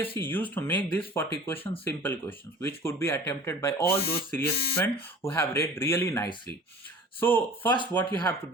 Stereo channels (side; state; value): both; normal; correlation 0.44